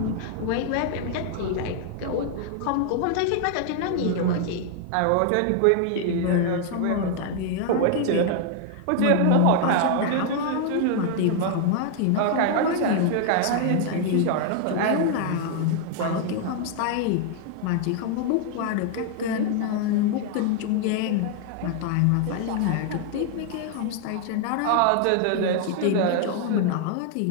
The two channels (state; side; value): different; both; correlation 0.00